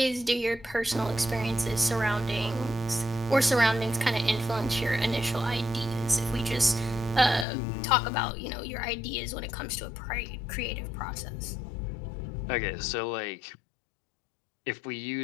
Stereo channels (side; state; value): right; drops out; at 7.5 s